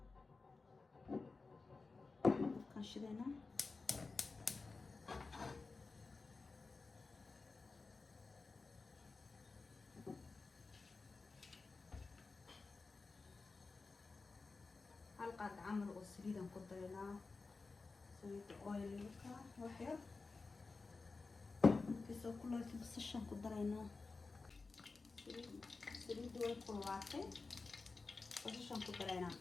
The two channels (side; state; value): right; quieter; 4.0 dB